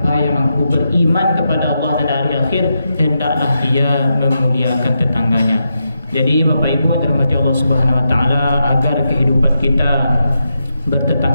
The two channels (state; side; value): inverted; both; correlation -0.85